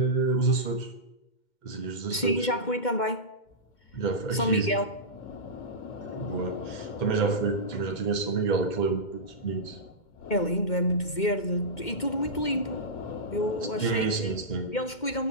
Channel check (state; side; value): late; right; 2.1 ms